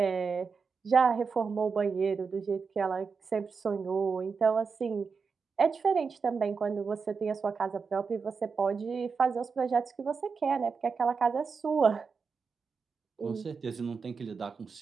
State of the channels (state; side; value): quieter; left; 5.3 dB